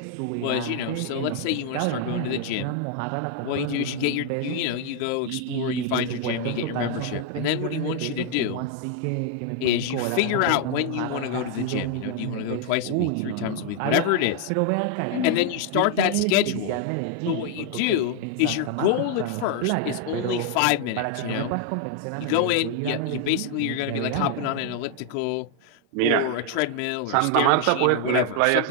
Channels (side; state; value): both; different; correlation 0.00